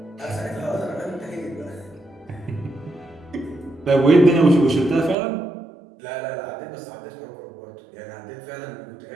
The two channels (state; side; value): drops out; left; at 5.2 s